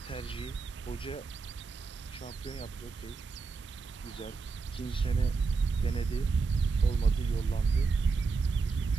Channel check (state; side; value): quieter; left; 4.6 dB